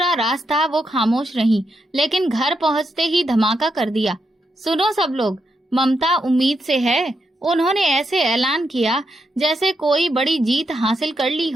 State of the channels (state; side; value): normal; both; correlation 0.83